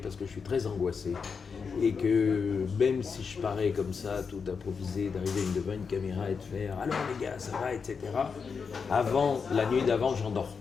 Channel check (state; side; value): quieter; right; 5.7 dB